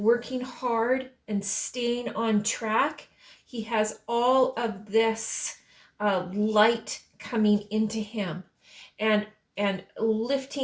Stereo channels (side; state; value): both; identical; correlation 1.00